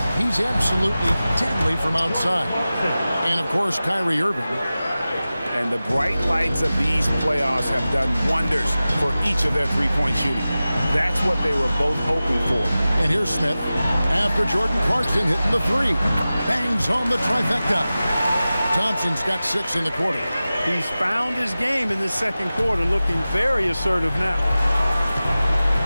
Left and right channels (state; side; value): inverted; both; correlation -0.96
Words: He's absolutely deadly from outside. And, of course, Kyrie Irving. And the bright lights of these playoffs have done wonders for each of their three-point shooting. That's what they were both hoping for. And here's Smith after Jordan Clarkson hitting the three. Bangs home the trifecta. Thompson's got 6 in the quarter. He's found his game in the second quarter, looking very assertive now.